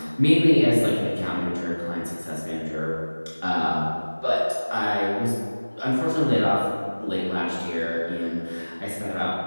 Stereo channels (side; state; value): both; inverted; correlation -1.00